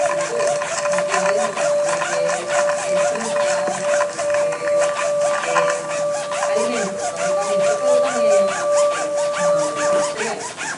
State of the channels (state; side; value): identical; both; correlation 1.00